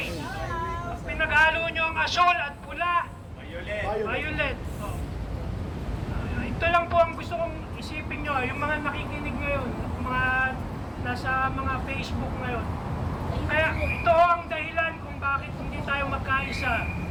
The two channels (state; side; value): identical; both; correlation 1.00